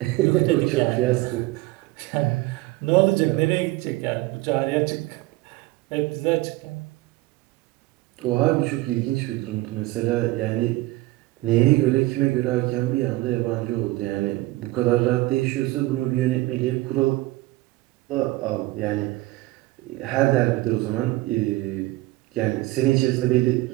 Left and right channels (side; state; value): left; quieter; 19.4 dB